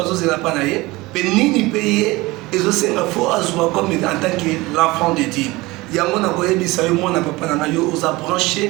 azozela pa na ye, pe nini pe ye ezosenga fo azwa comme en tant que l'enfant de Dieu. Yango na koyebisa yo mwana papa na yo oza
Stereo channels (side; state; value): left; quieter; 21.2 dB